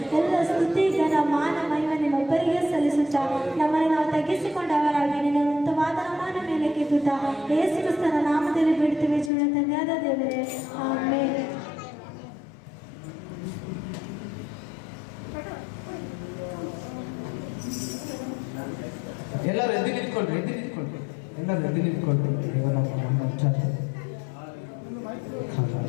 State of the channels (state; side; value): drops out; right; at 9.3 s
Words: ಎಲ್ಲ ಸ್ತುತಿ, ಘನ, ಮಾನ, ಮಹಿಮೆ ನಿಮ್ಮೊಬ್ಬರಿಗೆ ಸಲ್ಲಿಸುತ್ತಾ ನಮ್ಮನ್ನು ನಾವು ತಗ್ಗಿಸಿಕೊಂಡವರಾಗಿ ನಿನ್ನ ಉನ್ನತವಾದ ನಾಮದ ಮೇಲೆ ಕೆತ್ತುತ್ತಾ ಯೇಸು ಕ್ರಿಸ್ತನ ನಾಮದಲ್ಲಿ ಬಿಡ್ತೇವೆ. ಜೀವನ ತಂದೆಯಾದ ದೇವರೇ, ಆಮೆನ್. ಎಲ್ಲರೂ ಎದ್ದು ನಿಂತ್ಕೊಳ್ರಿ, ಎಲ್ಲರೂ ಎದ್ದು ನಿಂತ್ಕೊಳ್ರಿ.